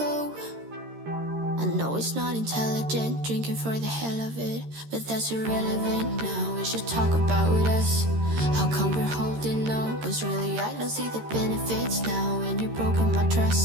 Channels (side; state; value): left; late; 13 ms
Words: I know it's not intelligent, drinking for the hell of it, but that's irrelevant now. We should talk about us. How come we're holding on? Cause really I don't see the benefits now. And you've broken my